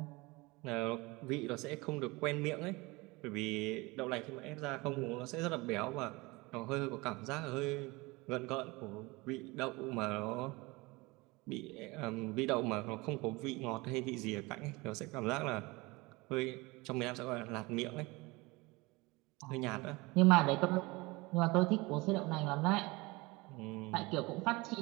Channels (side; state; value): left; quieter; 23.7 dB